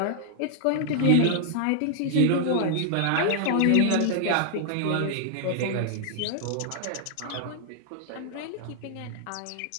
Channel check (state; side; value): different; both; correlation -0.01